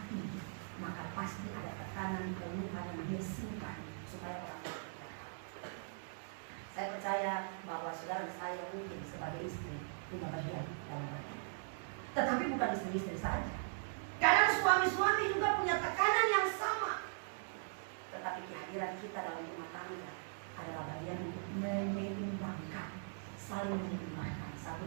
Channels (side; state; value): left; silent; digital silence